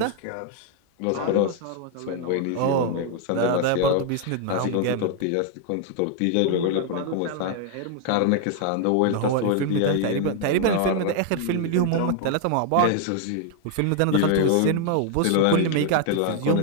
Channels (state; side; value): different; both; correlation 0.00